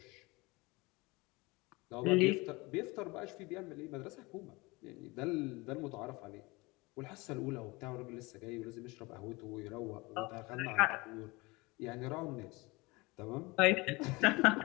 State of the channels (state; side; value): quieter; right; 24.1 dB